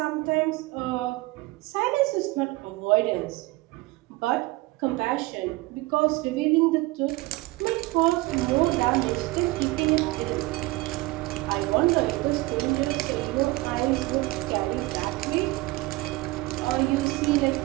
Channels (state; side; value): quieter; left; 21.1 dB